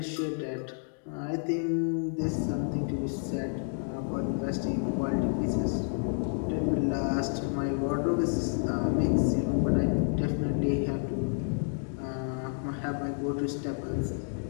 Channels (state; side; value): silent; right; 58 dB below the other